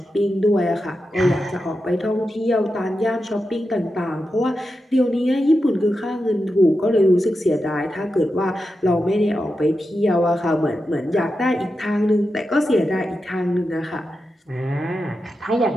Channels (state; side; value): normal; both; correlation 0.89